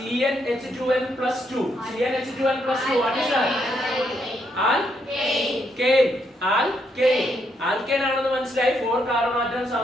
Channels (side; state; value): both; normal; correlation 0.76